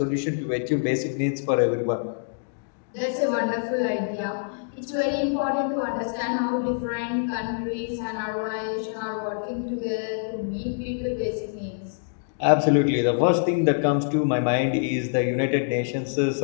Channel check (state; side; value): silent; right; digital silence